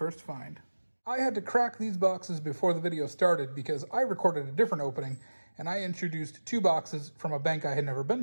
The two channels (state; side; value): inverted; both; correlation -1.00